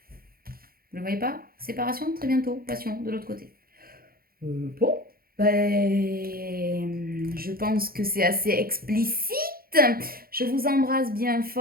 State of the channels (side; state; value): left; late; 0.43 ms